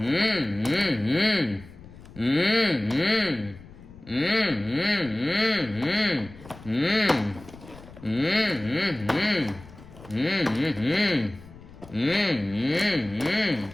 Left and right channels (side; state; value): left; noise; rumble, 19 dB below the sound